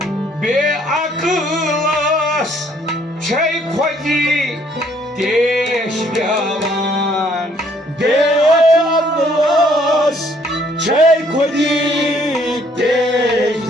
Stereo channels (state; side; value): normal; both; correlation 0.64